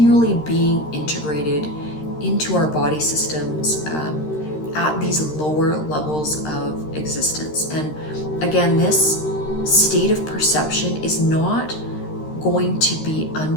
being integrated into our body systems at these lower levels of existence. And again, this state of perception is not going to be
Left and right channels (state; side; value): late; right; 13 ms